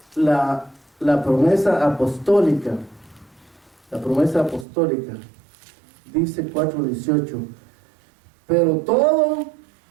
la promesa apostólica. La promesa apostólica. Dice 4:18. Pero todo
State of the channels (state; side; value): drops out; left; at 4.7 s